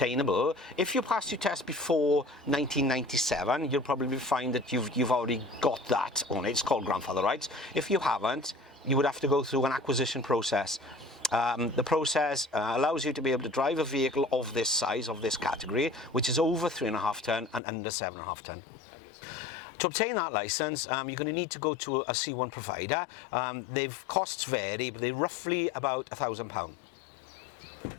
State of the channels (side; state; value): right; drops out; at 17.6 s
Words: If you passed your test before 1997, you'll probably find that you've already got that on it. It's called grandfather rights. If you haven't, you would have to go through an acquisition process. The process allows you to be able to drive a vehicle of this size, of this category, which is over 3.5 ton and under 7.5 ton. To obtain that license, you're going to need to go to a C1 provider. Costs vary, but they're roughly about £1,000.